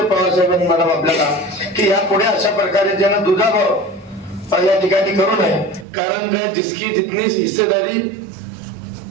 पवार साहेबांनी मॅडम आपल्याला की यापुढे अशा प्रकारे ज्यांना दुजाभाव या ठिकाणी करू नये. कारण काय जिसकी जितनी हिस्सेदारी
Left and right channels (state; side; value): drops out; left; at 5.9 s